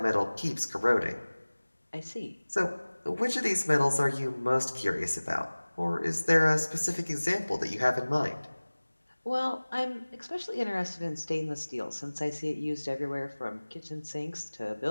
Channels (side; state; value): both; inverted; correlation -1.00